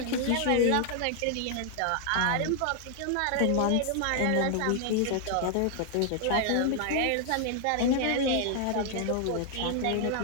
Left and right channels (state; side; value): different; both; correlation 0.00